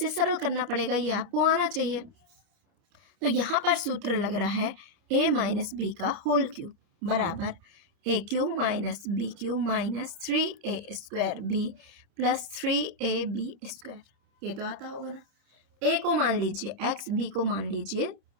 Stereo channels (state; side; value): late; left; 29 ms